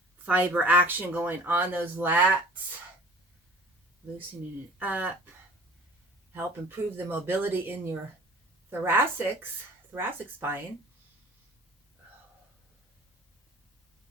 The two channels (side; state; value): both; normal; correlation 0.47